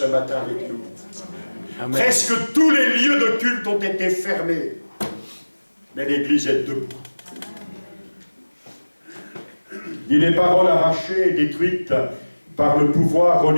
matin avec nous. Amen. Presque tous les lieux de culte ont été fermés. Mais l'Église est debout. Ni les paroles arrachées et détruites par le pouvoir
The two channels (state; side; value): inverted; both; correlation -1.00